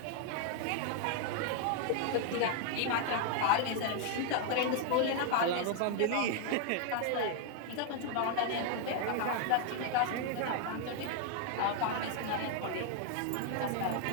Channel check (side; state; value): both; different; correlation 0.00